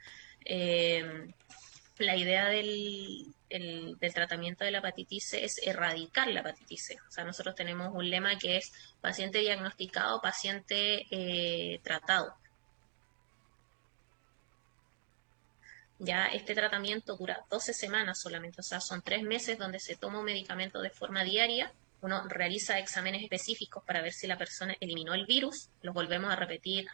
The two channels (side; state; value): left; silent; digital silence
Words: Eh, la idea del tratamiento de la hepatitis C es erradicar la hepatitis C. O sea, nosotros tenemos un lema que es paciente diagnosticado, paciente tratado. Ya este tratamiento dura 12 semanas solamente, o sea, son 3 meses donde se toma un medicamento de forma diaria. Uno realiza exámenes específicos para ver si la persona eliminó el virus. Los volvemos a repetir